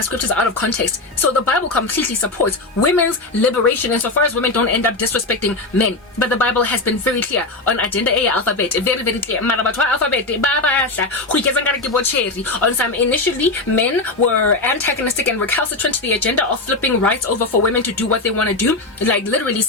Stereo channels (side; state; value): right; quieter; 3.1 dB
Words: scriptures out of context. So the Bible completely supports women's liberation insofar as women don't end up disrespecting men. But the Bible has been very clear on agenda A alphabet, very, very clear. On some, initially, men were antagonistic and recalcitrant to the agenda of flipping rights over for women to do what they want to do. Like literally